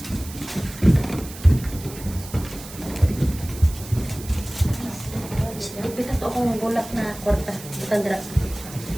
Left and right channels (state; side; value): noise; right; hiss, 15 dB below the sound